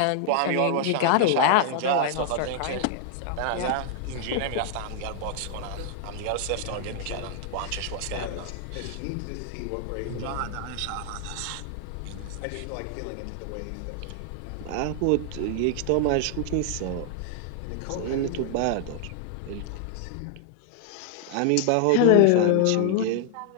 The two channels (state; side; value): different; both; correlation 0.00